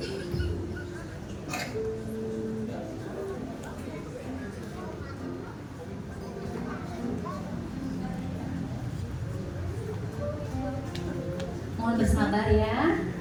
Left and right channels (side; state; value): both; identical; correlation 1.00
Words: Mohon bersabar ya.